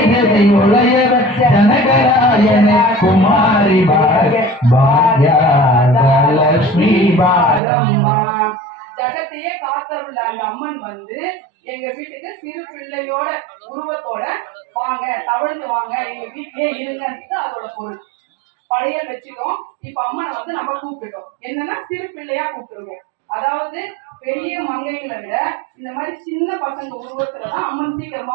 உளையவ ஜனகராயன குமாரி பாக்யாத லட்சுமி பாரம்மா ஜகத்தையே காத்தருள்ள அந்த அம்மன் வந்து எங்க வீட்டுக்கு சிறு பிள்ளையோட உருவத்தோட வாங்க தவழ்ந்து வாங்க எங்க வீட்டிலே இருங்கன்றது அதோட பொருள் படையல் வச்சுட்டோம் இப்ப அம்மனை வந்து நம்ம கூப்பிட்டுட்டோம் என்னன்னா சிறு பிள்ளையா கூப்பிட்டுருக்கோம் அதாவது பெரிய மங்கைகளை விட இந்த மாதிரி சின்ன பசங்க உருவத்துலதான் அம்மன்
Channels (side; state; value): left; drops out; at 7.6 s